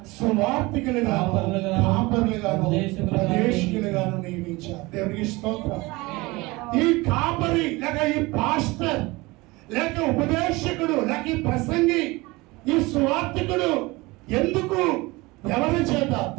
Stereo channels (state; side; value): quieter; left; 22.7 dB